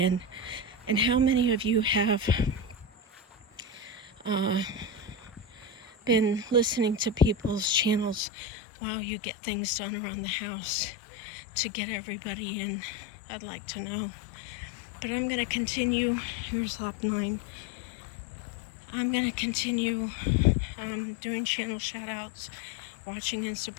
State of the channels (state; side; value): drops out; right; at 8.2 s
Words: in. And how many of you have been listening to people's channels while you get things done around the house to get everybody in? I'd like to know. But I'm going to continue. Here's lap 9. I'm going to continue doing channel shoutouts, watching and